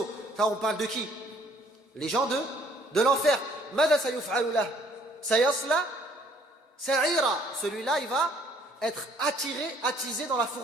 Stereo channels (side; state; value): both; normal; correlation 0.61